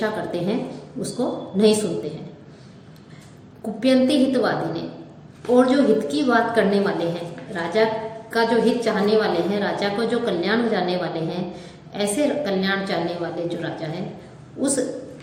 करते हैं, उसको नहीं सुनते हैं। कुप्यंती हितवादी ने, और जो हित की बात करने वाले हैं, राजा का जो हित चाहने वाले हैं, राजा को जो कल्याण हो जाने वाले हैं, ऐसे कल्याण चाहने वाले जो राजा हैं, उस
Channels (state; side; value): identical; both; correlation 1.00